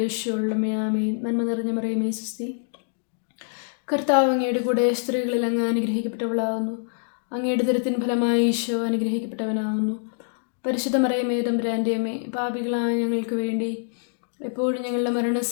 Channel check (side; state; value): right; silent; digital silence